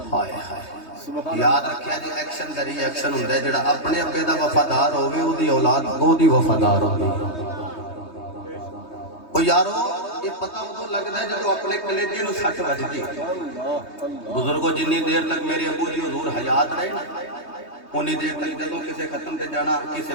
हाय हाय याद रखिया जी, एक्शन दा रिएक्शन हुंदा है, जेड़ा अपने अब्बे दा वफादार होवे ओदी औलाद ओदी वफादार होवे। ओ यारो ये पता उदों लगदा है जदों अपने कलेजे नूं सट वजदी। बुजुर्गों जिन्नी देर तक मेरे अबू जी हुजूर हयात रहे ना, उन्नी देर तक जदों किसी खत्म ते जाना, किसी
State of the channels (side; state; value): right; late; 3.2 ms